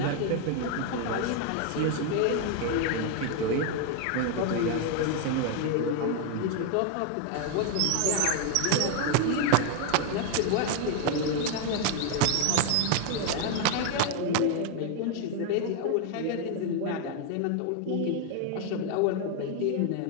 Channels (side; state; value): both; different; correlation 0.01